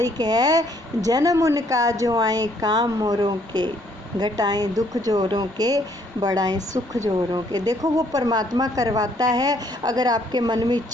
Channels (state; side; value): normal; both; correlation 0.66